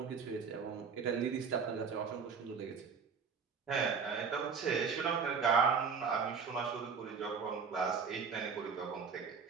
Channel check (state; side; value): quieter; left; 5.8 dB